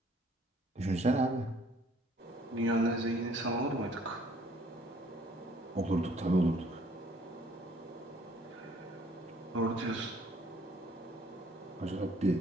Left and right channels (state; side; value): normal; both; correlation 0.60